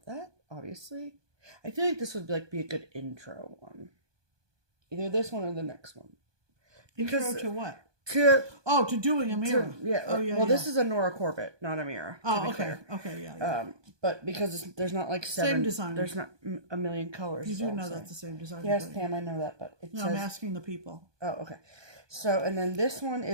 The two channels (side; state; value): left; late; 1.2 ms